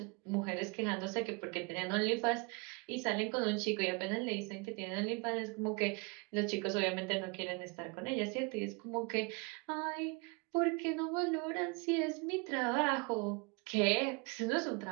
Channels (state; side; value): quieter; left; 30.4 dB